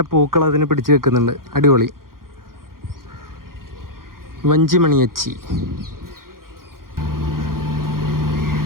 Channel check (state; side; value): late; left; 0.92 ms